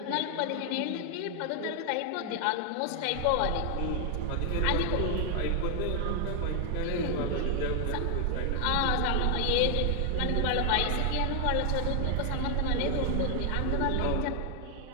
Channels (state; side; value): different; both; correlation 0.00